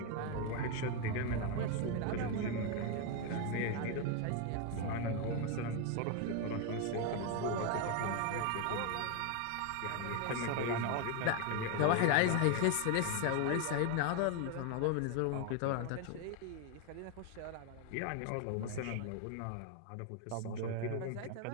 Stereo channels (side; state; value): both; different; correlation 0.01